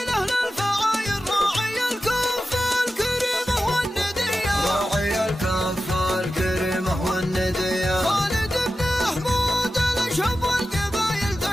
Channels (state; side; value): normal; both; correlation 0.93